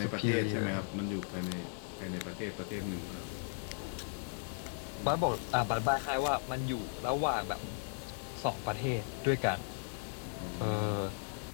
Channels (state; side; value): silent; right; 53 dB below the other